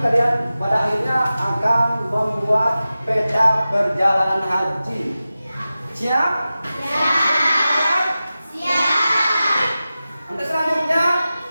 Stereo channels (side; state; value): both; inverted; correlation -0.95